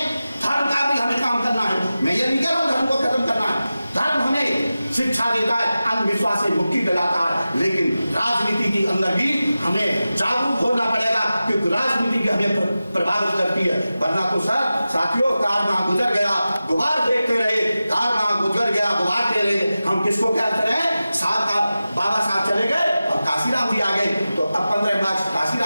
धर्म का भी हमें काम करना है। मैं ये नहीं कह रहा हूँ धर्म को खत्म करना है, धर्म हमें शिक्षा देता है, अंधविश्वास से मुक्ति दिलाता है, लेकिन राजनीति के अंदर भी हमें जागरूक होना पड़ेगा, क्योंकि राजनीति हमें प्रभावित करती है। वरना तो सर साथियों, कार वहां गुजर गया, गुबार देखते रहे, कार वहां गुजर गया, गुबार दे रहे, हम किसको क्या करें? साहब का बाबा साहब चले गए और काशीराम जी आ गए। गए तो अब 15 मार्च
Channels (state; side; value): inverted; both; correlation -0.95